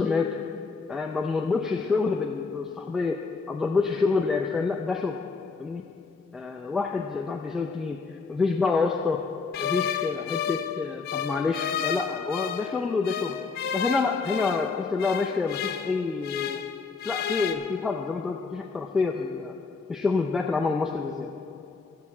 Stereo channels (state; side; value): quieter; right; 4.5 dB